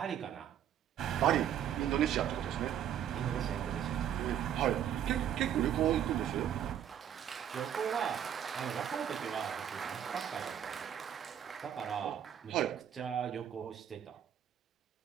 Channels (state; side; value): quieter; left; 9.7 dB